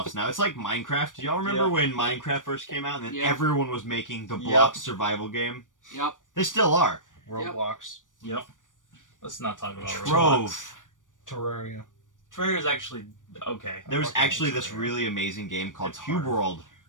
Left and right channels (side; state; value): right; late; 0.88 ms